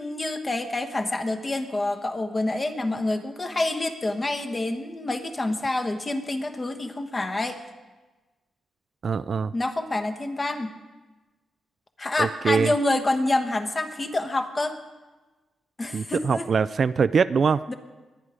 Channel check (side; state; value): both; normal; correlation 0.89